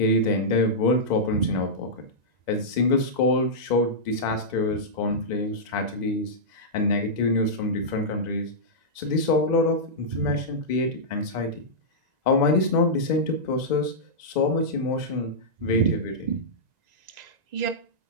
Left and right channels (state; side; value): late; left; 1.9 ms